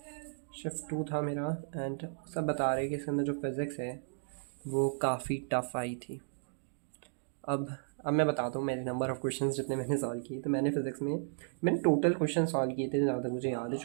शिफ्ट 2 था मेरा। एंड सब बता रहे कि इसके अंदर जो फिज़िक्स है वो काफ़ी टफ़ आई थी। अब मैं बताता हूँ मेरे नंबर ऑफ़ क्वेश्चंस जितने मैंने सॉल्व किए। तो मैंने फिज़िक्स में मैंने टोटल क्वेश्चन सॉल्व किए थे, जहाँ तक मुझे याद है,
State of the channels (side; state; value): left; silent; digital silence